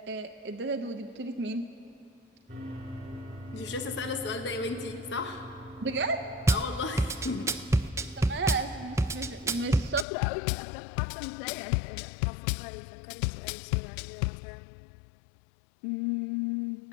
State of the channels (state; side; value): drops out; right; at 10.1 s